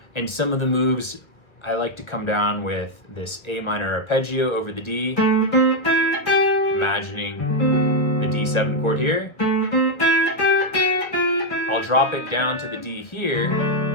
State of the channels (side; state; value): right; late; 1.3 ms